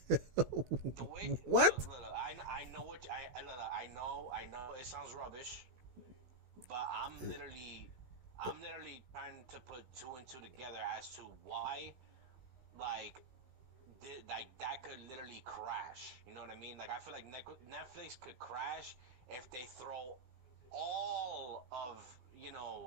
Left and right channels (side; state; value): left; late; 16 ms